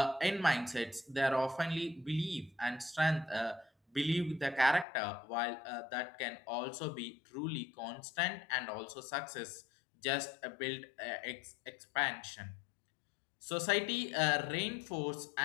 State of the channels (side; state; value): right; drops out; at 4.9 s